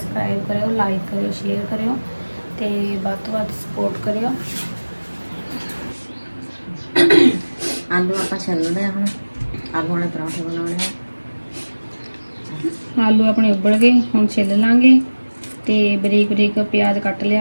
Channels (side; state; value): both; inverted; correlation -1.00